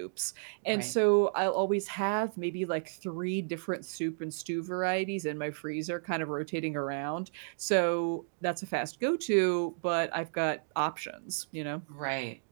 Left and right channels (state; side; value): silent; left; digital silence